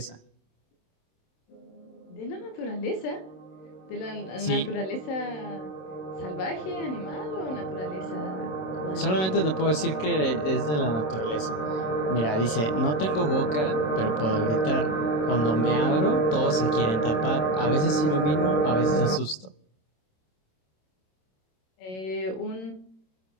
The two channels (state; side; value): late; right; 27 ms